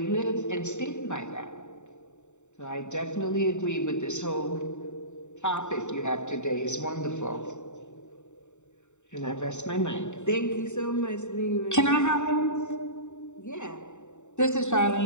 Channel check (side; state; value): right; late; 0.84 ms